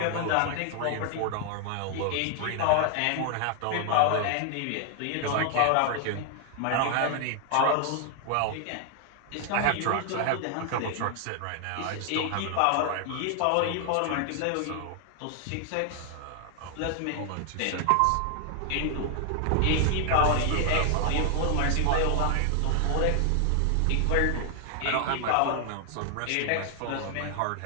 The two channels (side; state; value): both; different; correlation 0.00